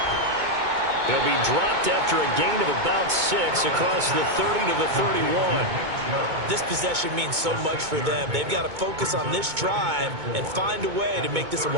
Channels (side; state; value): left; late; 2.2 ms